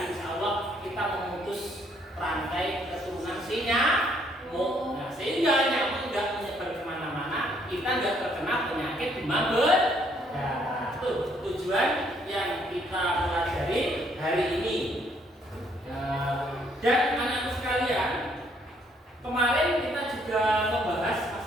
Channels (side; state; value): both; normal; correlation 0.68